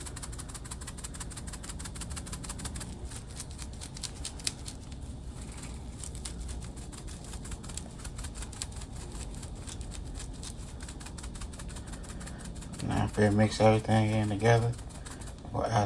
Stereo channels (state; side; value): identical; both; correlation 1.00